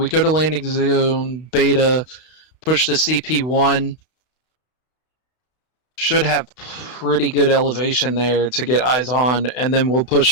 landing zone beta, push the CP1. Should have pretty good elevation there to get eyes on, and then we'll push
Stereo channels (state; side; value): late; right; 32 ms